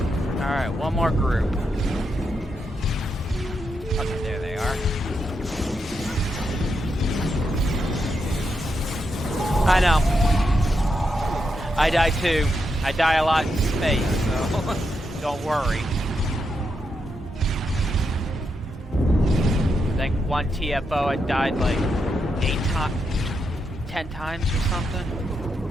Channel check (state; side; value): normal; both; correlation 0.83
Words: Alright, one more group. Okay, there they are. I know. I die too. I die a lot in space, so don't worry. I think one TFO I died like 10 times or something.